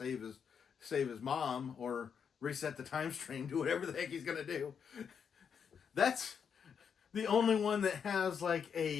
his mom or reset the time stream, do whatever the heck he's gonna do. That's the only one that has like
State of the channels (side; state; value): right; quieter; 7.0 dB